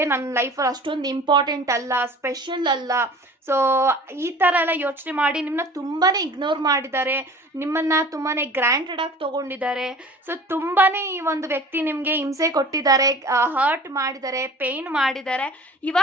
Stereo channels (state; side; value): normal; both; correlation 0.44